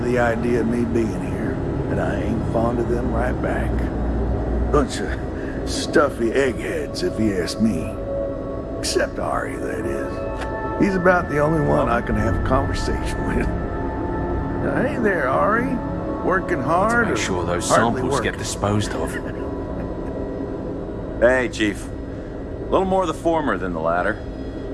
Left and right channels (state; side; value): identical; both; correlation 1.00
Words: the idea of me being here, and I ain't fond of them right back. Bunch of stuffy eggheads, if you ask me. Except Ari, that is. He's about the only one I can have a conversation with. Now, hey there, Ari. Working hard? Make sure those hardly samples working? get disposed of. Hey, Chief. A little more the former than the latter.